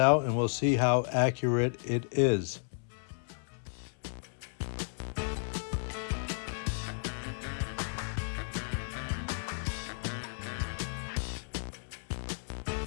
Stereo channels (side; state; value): right; silent; 56 dB below the other